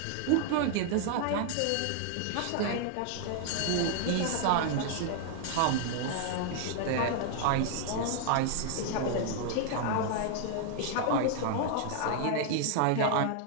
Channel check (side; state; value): both; different; correlation 0.00